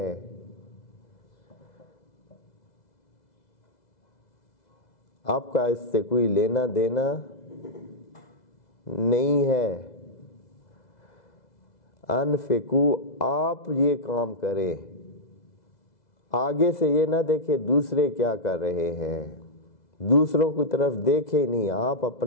آپ کا اس سے کوئی لینا دینا نہیں ہے۔ انفقو، آپ یہ کام کریں، آگے سے یہ نہ دیکھیں دوسرے کیا کر رہے ہیں، دوسروں کی طرف دیکھیں نہیں، آپ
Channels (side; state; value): right; late; 2.0 ms